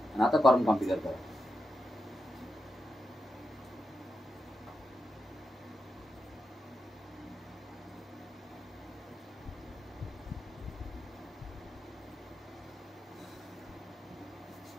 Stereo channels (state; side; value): normal; both; correlation 0.87